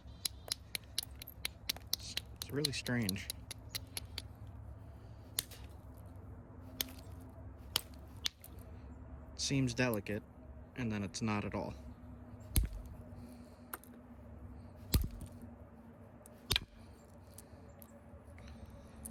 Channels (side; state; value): both; identical; correlation 1.00